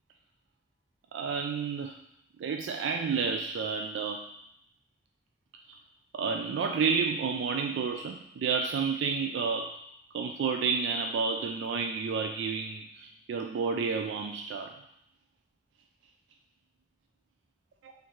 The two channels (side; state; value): left; quieter; 5.0 dB